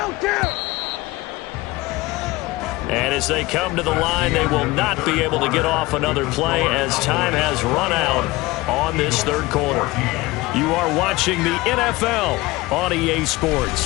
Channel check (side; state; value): right; quieter; 20.5 dB